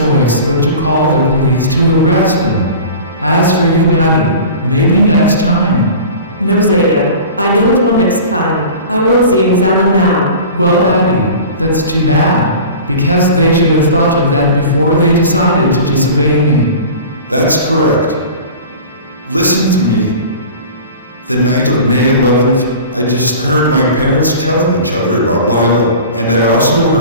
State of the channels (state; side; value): inverted; both; correlation -0.38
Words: but to call the police to arrest him. As for you, Addy, maybe next time. No, Zeta, I don't want next time. I want Z and Zana now. Well, Addy, that's too bad, because they should have thought of that before they decided to disobey me. That's correct. Listen to me. The night of May 11th, I just heard my parents telling each other about Lyla, and I also